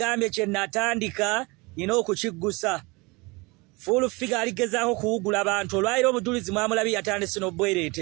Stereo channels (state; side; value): quieter; left; 25.9 dB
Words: kye natandika nina okukiggusa. Full figure aligezaako kuwugula abantu. Olwayira obujulizi mwamulabi yatandise